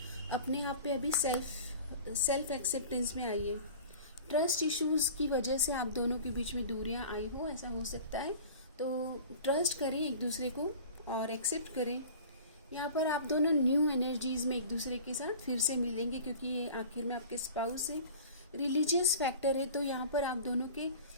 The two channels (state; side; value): inverted; both; correlation -0.40